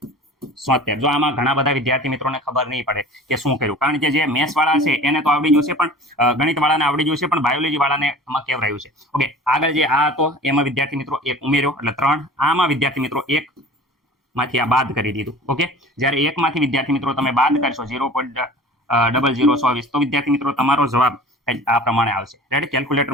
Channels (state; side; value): normal; both; correlation 0.41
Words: જો આમાં ઘણા બધા વિદ્યાર્થી મિત્રોને ખબર નહીં પડે કે શું કર્યું, કારણ કે જે મેથ્સ વાળા છે એને તો આવડી ગયું છે, પણ ગણિત વાળાને આવડી ગયું છે, પણ બાયોલોજી વાળાને આમાં કેવરાયું છે. ઓકે, આગળ જે આ હતો એમાં વિદ્યાર્થી મિત્રો 1 ઉમેર્યો એટલે 3. આમાં વિદ્યાર્થી મિત્રો 1 માંથી આ બાદ કરી દીધું. ઓકે, જ્યારે 1 માંથી વિદ્યાર્થી મિત્રો તમે બાદ કરશો 0.0024 તો વિદ્યાર્થી મિત્રો તમારો જવાબ આ પ્રમાણે આવશે. રેડી.